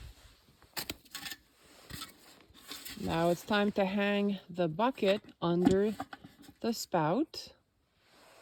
Now it's time to hang the bucket under the spout.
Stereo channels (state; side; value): identical; both; correlation 1.00